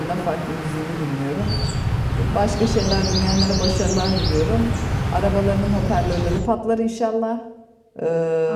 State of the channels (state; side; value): identical; both; correlation 1.00